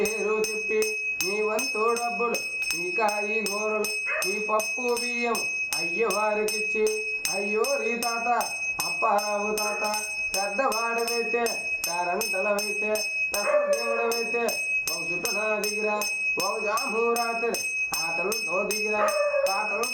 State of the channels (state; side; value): identical; both; correlation 1.00